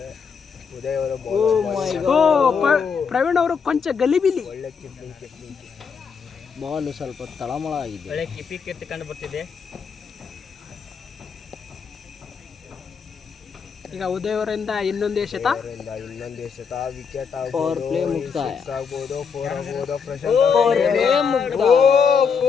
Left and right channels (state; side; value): quieter; right; 6.1 dB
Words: ಉದಯ್ ಅವರ ಪ್ರವೀಣ್ ಅವರು ಕೊಂಚ ಗಲಿಬಿಲಿ. ಒಳ್ಳೆ ಕಿಪ್ಲಿಂಗ್ ಬಾಲ್ ಸ್ವಲ್ಪ ತಳಮಳ ಆಗಿದೆ. ಒಳ್ಳೆ ಕಿಪಿ ಕೀರ್ತಿ ಕಂಡು ಬರ್ತಿದೆ. ಈಗ ಉದಯ್ ಅವರಿಂದ ಇನ್ನೊಂದೇ ಶತ. ಇನ್ನೊಂದೇ ಶತ. ವಿಕೆಟ್ ಪವರ್ ಪ್ಲೇ ಮುಕ್ತಾಯ ಆಗ್ಬೋದು, 4 ಆಗ್ಬೋದು. ಪ್ರಶಾಂತ್